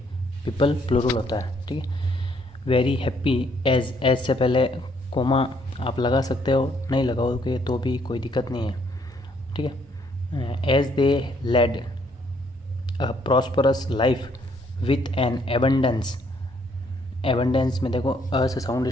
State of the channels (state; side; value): normal; both; correlation 0.68